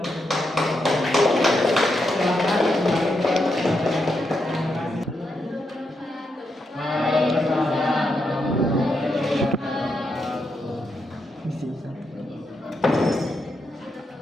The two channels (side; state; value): both; normal; correlation 0.83